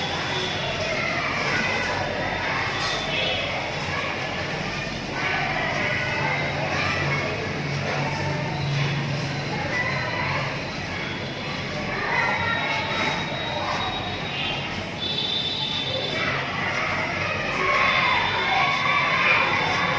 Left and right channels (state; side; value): identical; both; correlation 1.00